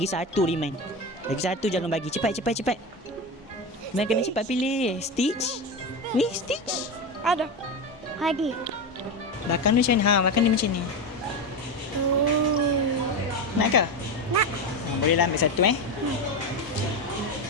1 Iman. Lagi 1 jangan bagi. Cepat. Iman kena cepat pilih. Stitch? Ni Stitch? Ada. Belakang dia macam ni. Belakang dia macam ni. Nak ke? Nak. Bolehlah ambil satu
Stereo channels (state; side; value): normal; both; correlation 0.18